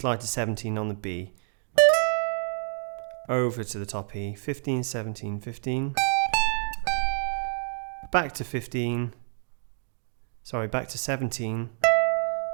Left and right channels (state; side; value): silent; left; digital silence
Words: to 17 on the B. Over to the top E, 15, 17, 15. Back to 15. Sorry, back to 17.